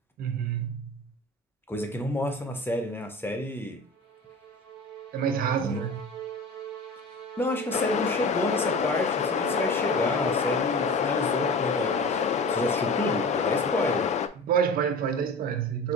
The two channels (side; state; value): both; normal; correlation 0.34